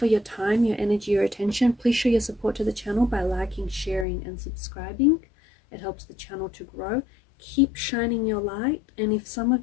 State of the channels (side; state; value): right; drops out; at 4.0 s